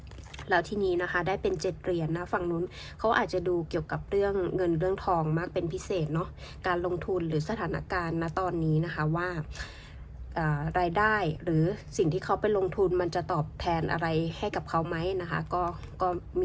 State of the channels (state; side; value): identical; both; correlation 1.00